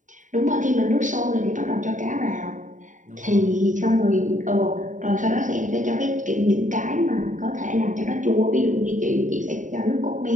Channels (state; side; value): late; left; 0.37 ms